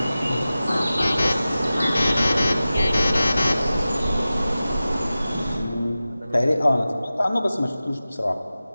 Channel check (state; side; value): inverted; both; correlation -0.95